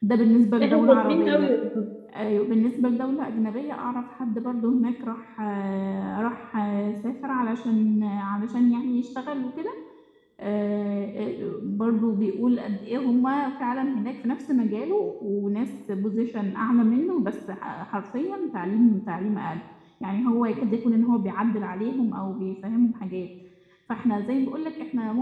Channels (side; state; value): both; identical; correlation 1.00